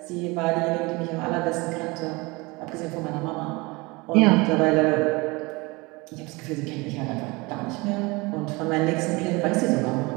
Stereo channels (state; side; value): quieter; left; 24.8 dB